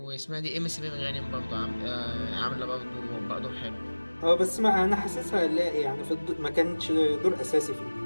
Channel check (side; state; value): both; inverted; correlation -1.00